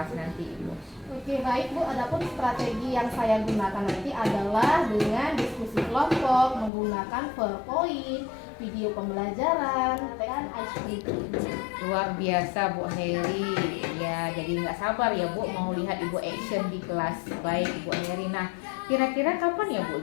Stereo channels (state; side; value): drops out; right; at 6.7 s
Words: nanti Ibu? Oke, baik Bu. Adapun strategi yang saya gunakan nanti adalah dengan diskusi kelompok, menggunakan PowerPoint, video pembelajaran, dan ice breaking. Luar biasa Bu Heri. Ya, jadi nggak sabar ya Bu mau lihat Ibu action di kelas. Baik Ibu Heri. Nah, kira-kira kapan ya Bu